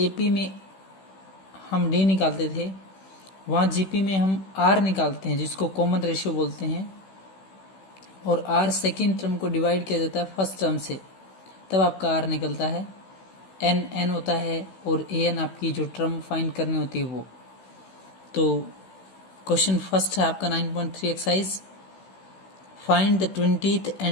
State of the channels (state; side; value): late; right; 16 ms